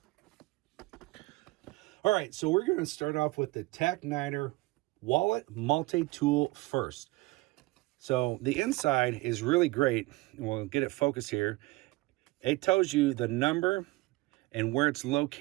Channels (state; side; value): quieter; left; 21.3 dB